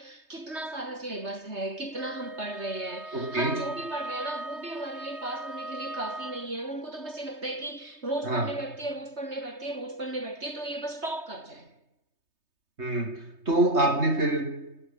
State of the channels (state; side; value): late; left; 3.2 ms